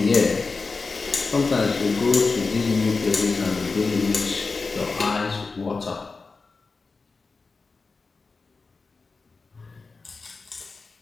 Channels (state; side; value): quieter; right; 4.2 dB